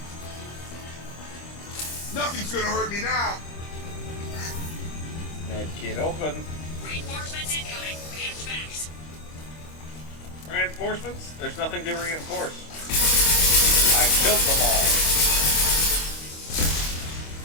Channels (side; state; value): right; late; 25 ms